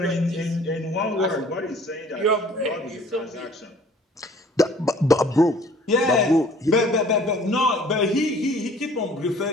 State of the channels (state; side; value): normal; both; correlation 0.53